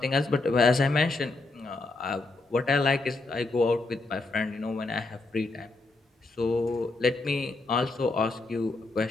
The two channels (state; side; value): quieter; right; 3.3 dB